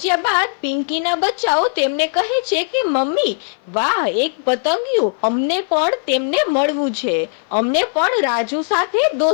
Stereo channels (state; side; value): silent; right; 58 dB below the other